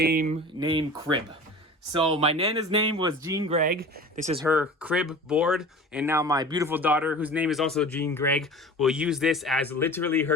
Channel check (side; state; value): both; normal; correlation 0.38